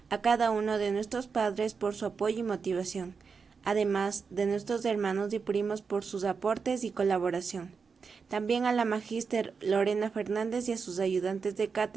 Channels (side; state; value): left; quieter; 5.4 dB